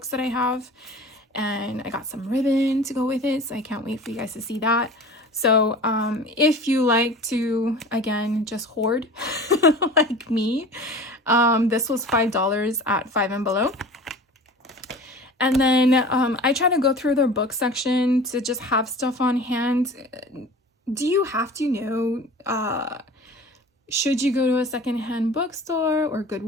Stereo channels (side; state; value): both; normal; correlation 0.39